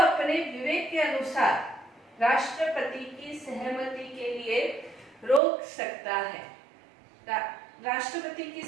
विवेक के अनुसार राष्ट्रपति की सहमति के लिए रोक सकता है। राष्ट्रपति की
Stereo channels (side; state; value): left; drops out; at 5.4 s